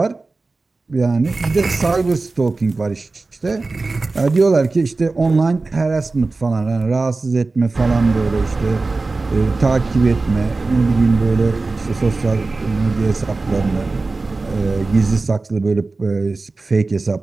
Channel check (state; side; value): quieter; left; 3.6 dB